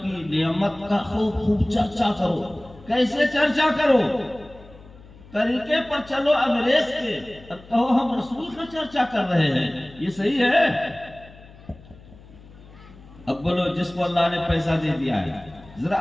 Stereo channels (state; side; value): noise; left; hum, 21 dB below the sound